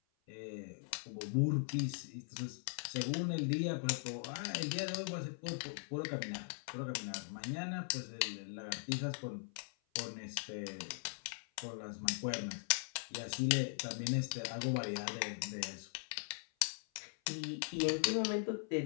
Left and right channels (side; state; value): right; silent; 51 dB below the other